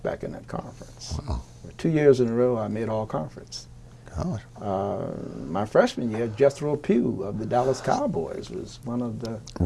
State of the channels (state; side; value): identical; both; correlation 1.00